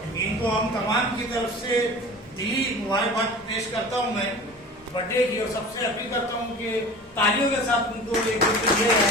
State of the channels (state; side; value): normal; both; correlation 0.38